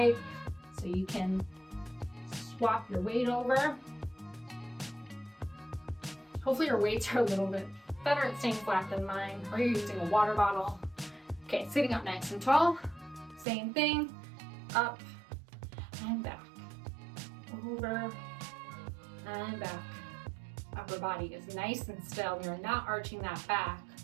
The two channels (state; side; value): drops out; left; at 13.5 s